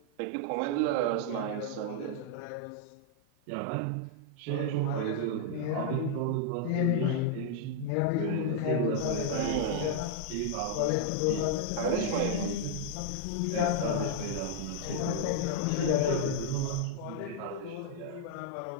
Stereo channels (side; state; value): both; different; correlation -0.01